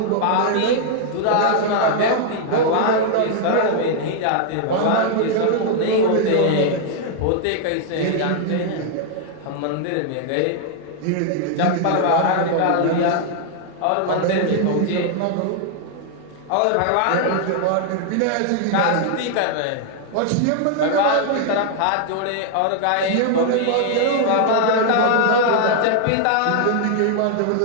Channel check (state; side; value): different; both; correlation 0.00